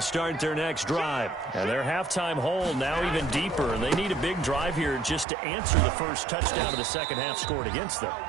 start their next drive. And their halftime hole now even deeper. And they need a big drive here just to answer the first touchdown of the second half scored against them.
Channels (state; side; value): drops out; left; at 5.2 s